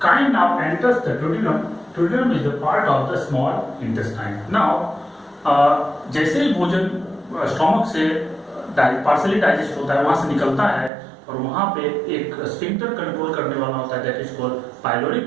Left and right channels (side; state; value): left; drops out; at 10.9 s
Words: now enters the duodenum. Duodenum is the part of the small intestine. Now, जैसे ही भोजन stomach से partially digest होता है, वहां से निकलता है, और वहां पे एक स्फिंक्टर कंट्रोल करने वाला होता है, that is called